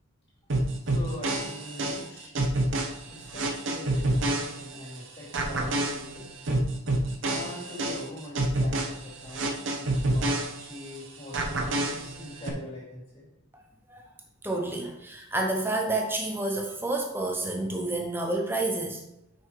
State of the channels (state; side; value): normal; both; correlation 0.55